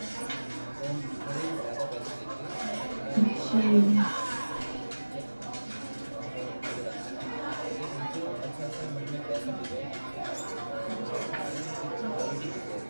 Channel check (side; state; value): both; inverted; correlation -1.00